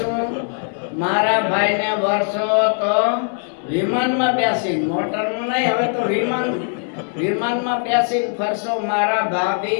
મારા ભાઈને વર્ષો તો વિમાનમાં બેસી, મોટરનું નહીં, હવે તો વિમાનમાં બેસી ફરશો મારા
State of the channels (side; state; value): right; silent; 56 dB below the other